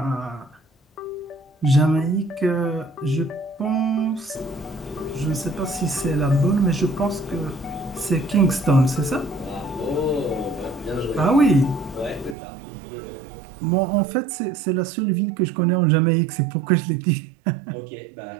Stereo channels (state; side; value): drops out; left; at 12.4 s